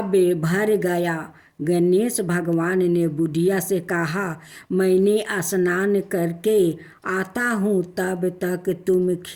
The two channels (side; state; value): both; identical; correlation 1.00